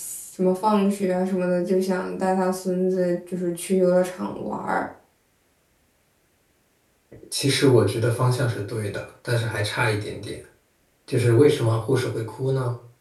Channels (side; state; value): both; identical; correlation 1.00